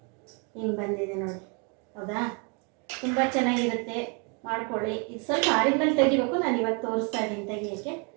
ಹಿಂಗೆ ಬಂದಿದೆ ನೋಡಿ, ಹೌದಾ? ತುಂಬ ಚೆನ್ನಾಗಿರುತ್ತೆ, ಮಾಡ್ಕೊಳ್ಳಿ. ಇದು ಸ್ವಲ್ಪ ಆರಿದ್ಮೇಲೆ ತೆಗಿಬೇಕು, ನಾನು ಇವಾಗ ತೋರಿಸ್ತಾ ಇದ್ದೀನಿ ತೆಗಿಯೋಕ್ಕೆ.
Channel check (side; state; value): left; quieter; 35.0 dB